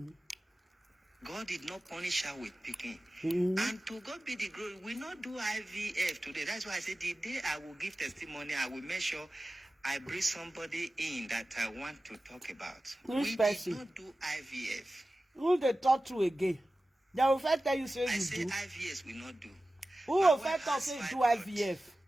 God did not punish her with picking. And to God be the glory, we not do IVF today. That's why I said the day I will give testimony, I will make sure I bring somebody in that I want to talk about. Which we person? did not do IVF. Who they talk to again? They will first tell you say I you say do. IVF we not do. Who My will wife first talk has say you do fibroid. IVF?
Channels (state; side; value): normal; both; correlation 0.95